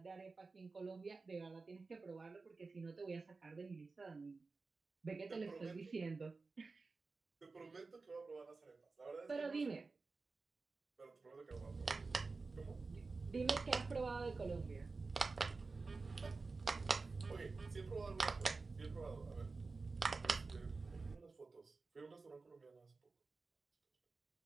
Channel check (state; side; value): quieter; left; 4.0 dB